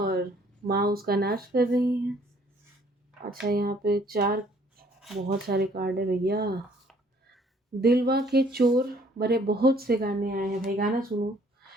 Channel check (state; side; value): normal; both; correlation 0.60